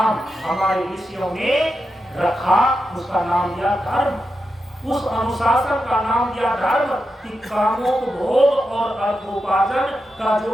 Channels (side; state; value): both; normal; correlation 0.88